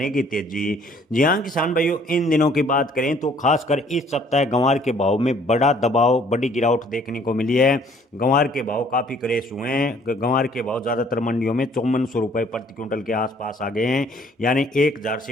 तेजी। जी हाँ किसान भाइयों, इन दिनों की बात करें तो खासकर इस सप्ताह गंवार के भाव में बड़ा दबाव, बड़ी गिरावट देखने को मिली है। गंवार के भाव काफ़ी क्रेश हुए हैं। गंवार के भाव ज़्यादातर मंडियों में 5400 रुपये प्रति क्विंटल के आसपास आ गए हैं, यानी 1000 से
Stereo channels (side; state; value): both; normal; correlation 0.59